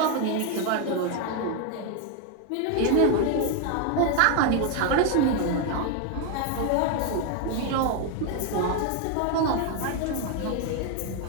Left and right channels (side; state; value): both; different; correlation 0.01